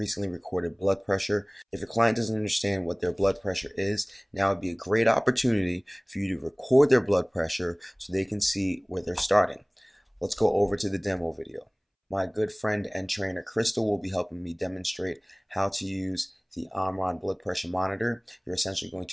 recorded blood pressure. If your client doesn't understand what their blood pressure is, now would be a great opportunity for you to record their blood pressure so they can see where they're starting. Let's go over to the demo video. My good friend and trainer Crystal will be helping me demonstrate how to use the Omron blood pressure monitor. You're essentially going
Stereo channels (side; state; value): both; identical; correlation 1.00